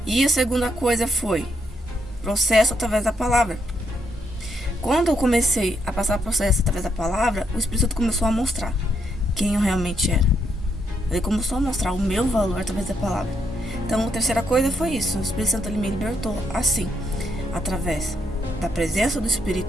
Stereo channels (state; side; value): normal; both; correlation 0.76